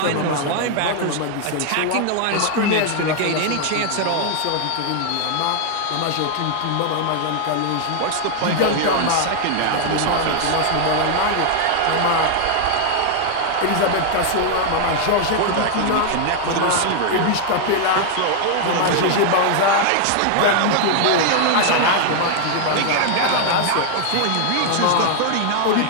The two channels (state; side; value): different; both; correlation 0.00